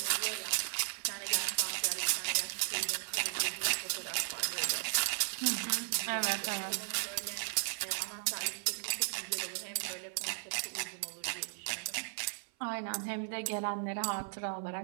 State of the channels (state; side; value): silent; left; 54 dB below the other